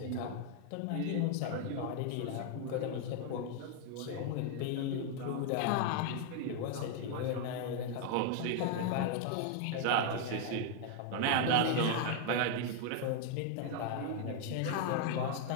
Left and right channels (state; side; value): different; both; correlation 0.00